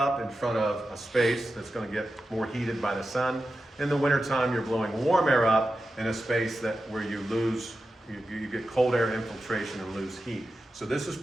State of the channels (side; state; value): both; normal; correlation 0.91